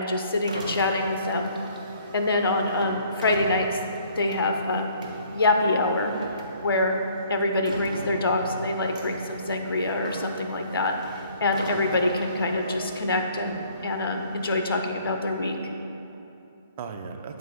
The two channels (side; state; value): both; inverted; correlation -0.59